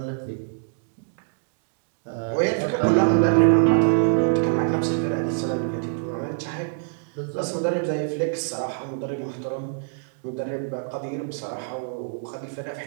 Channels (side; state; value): left; silent; digital silence